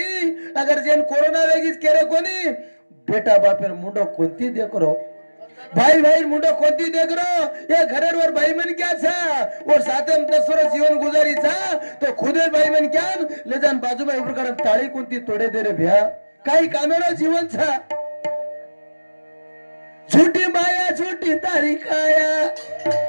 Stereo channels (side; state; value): both; inverted; correlation -1.00